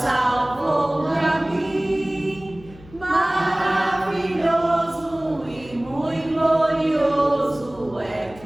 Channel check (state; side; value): noise; left; hum, 21 dB below the sound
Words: a mim. Maravilhoso e muito glorioso é